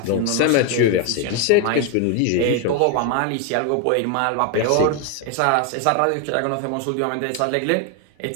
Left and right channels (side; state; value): both; different; correlation 0.01